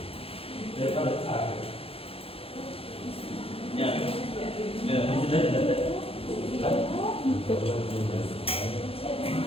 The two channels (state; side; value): late; right; 0.27 ms